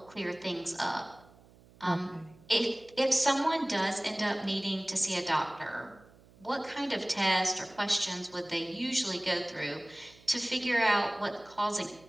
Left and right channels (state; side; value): noise; right; hum, 26 dB below the sound